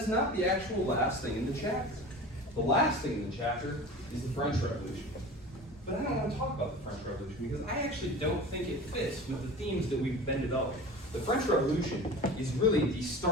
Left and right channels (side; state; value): both; normal; correlation 0.35